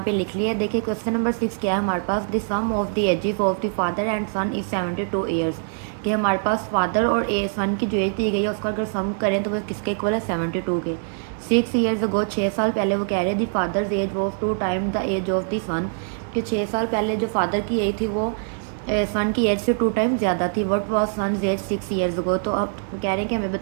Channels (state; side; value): silent; left; digital silence